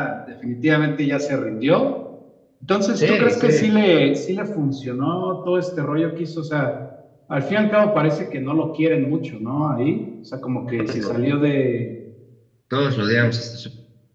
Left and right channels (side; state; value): both; identical; correlation 1.00